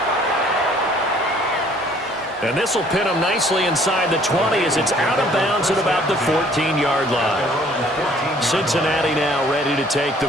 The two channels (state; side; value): normal; both; correlation 0.58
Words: And this will pin him nicely inside the 20 as it's out of bounds at about the 14-yard line. Cincinnati now ready to take the